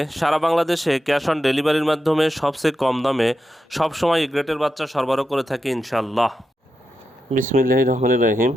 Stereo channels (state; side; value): normal; both; correlation 0.88